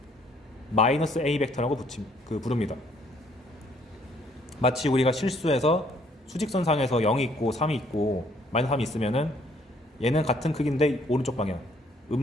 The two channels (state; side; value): normal; both; correlation 0.64